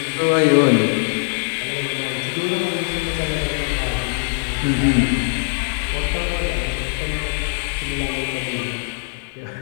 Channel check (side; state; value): right; silent; digital silence